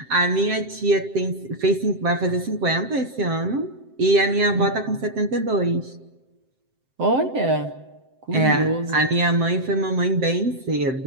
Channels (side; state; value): left; late; 7.7 ms